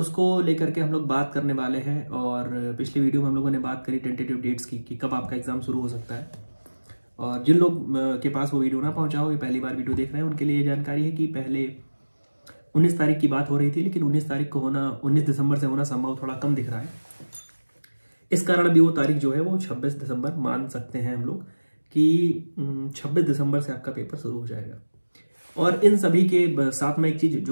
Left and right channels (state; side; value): inverted; both; correlation -1.00